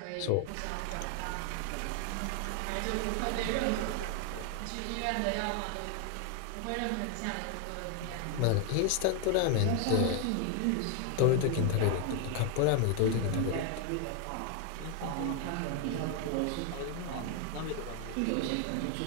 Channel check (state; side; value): different; both; correlation 0.00